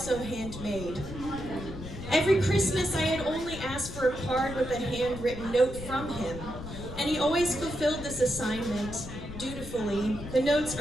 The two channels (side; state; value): left; noise; rumble, 10 dB below the sound